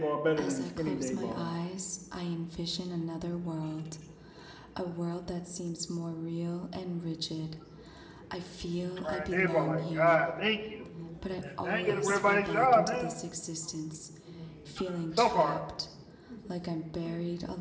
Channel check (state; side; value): identical; both; correlation 1.00